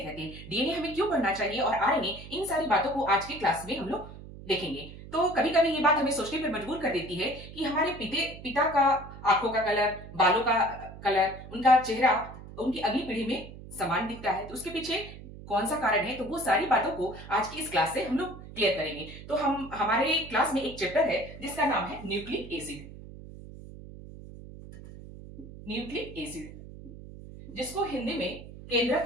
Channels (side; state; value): right; noise; hum, 15 dB below the sound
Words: हैं, डीएनए हमें क्यों पढ़ना चाहिए और आरएनए, इन सारी बातों को आज की क्लास में हम लोग देखेंगे। तो कभी कभी ये बात हमें सोचने पर मजबूर कर देती है कि हमारे पिता का आंखों का कलर, बालों का कलर, उनका चेहरा उनकी अगली पीढ़ी में समान दिखता है, तो उसके पीछे कौन सा कारण है। तो वो सारी बातों को आज की इस क्लास से हम लोग क्लियर करेंगे। तो हमारे क्लास में एक चैप्टर है जिसका नाम है न्यूक्लिक एसिड। न्यूक्लिक एसिड, जिसको हिंदी में